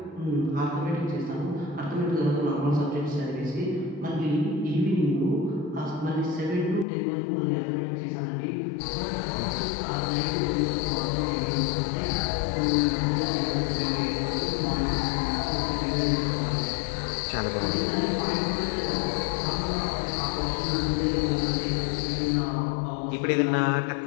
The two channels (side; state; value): right; drops out; at 6.9 s